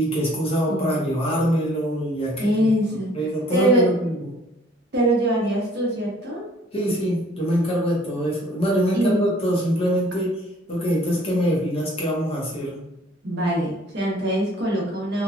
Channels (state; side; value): normal; both; correlation 0.57